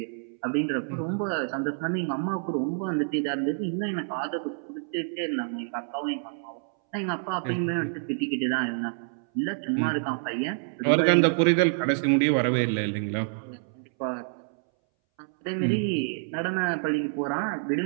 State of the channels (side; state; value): left; silent; 60 dB below the other